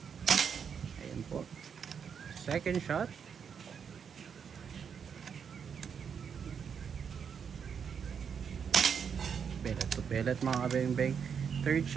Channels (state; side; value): quieter; left; 7.0 dB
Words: Ayan po. Second shot. Pellet to pellet mga kabeng-beng. Third